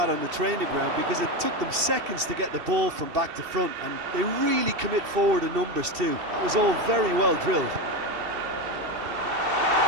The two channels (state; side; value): late; left; 2.7 ms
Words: on the training ground because it took them seconds to get the ball from back to front, and they really commit forward in numbers too. That was all very well drilled.